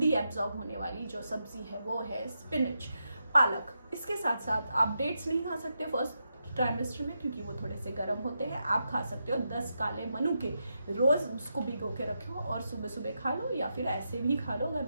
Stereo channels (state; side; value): inverted; both; correlation -0.85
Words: एब्जॉर्ब होने वाली जो सब्जी है वो है स्पिनच, पालक। इसके साथ साथ आप डेट्स नहीं खा सकते फर्स्ट ट्राइमेस्टर में, क्योंकि वो थोड़े से गर्म होते हैं। आप खा सकते हो 10 काले मनुके, रोज़ उसको भिगो के रखो और सुबह सुबह खा लो, या फिर ऐसे भी खा लो अगर